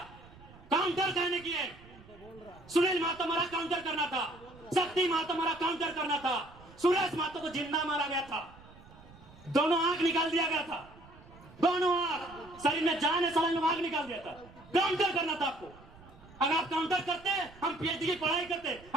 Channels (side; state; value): right; noise; rumble, 22 dB below the sound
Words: काउंटर कहने किए, सुनील महतो मारा काउंटर करना था, शक्ति महतो मारा काउंटर करना था, सुरेश महतो को जिंदा मारा गया था, दोनों आंख निकाल दिया गया था, दोनों आंख, शरीर में जान है, सलंग में आंख निकाल दिया था। काउंटर करना था आपको। अगर आप काउंटर करते, हम पीएचडी की पढ़ाई करते,